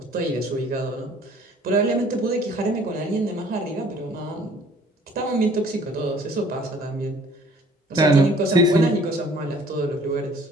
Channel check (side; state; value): both; normal; correlation 0.55